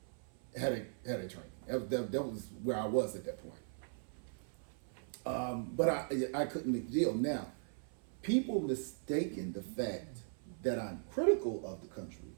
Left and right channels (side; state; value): left; silent; 52 dB below the other